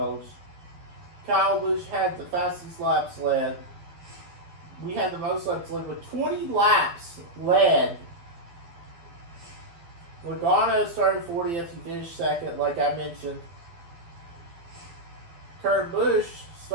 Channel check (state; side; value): late; left; 12 ms